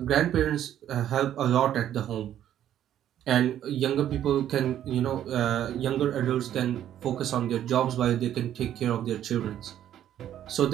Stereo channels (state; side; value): quieter; left; 11.1 dB